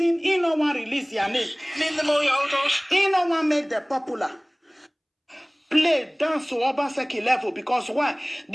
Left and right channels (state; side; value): identical; both; correlation 1.00